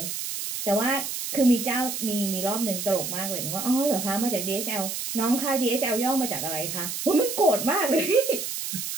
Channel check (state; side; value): noise; right; hiss, 5 dB below the sound